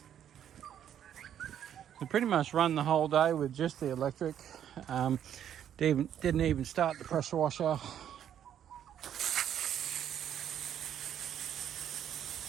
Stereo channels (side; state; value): left; quieter; 9.8 dB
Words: We pretty much run the whole day with just the electric. Didn't even start the pressure washer.